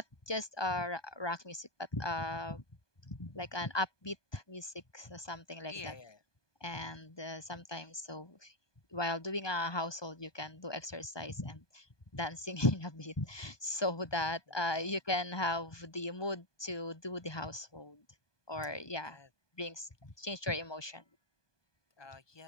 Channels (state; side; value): late; right; 1.2 ms